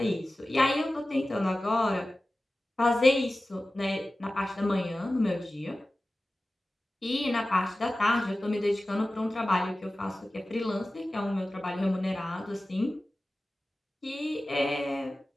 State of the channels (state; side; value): normal; both; correlation 0.96